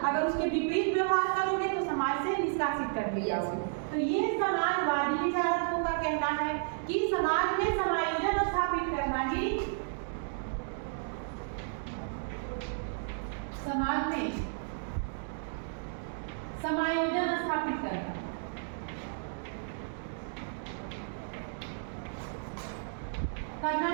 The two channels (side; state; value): left; silent; digital silence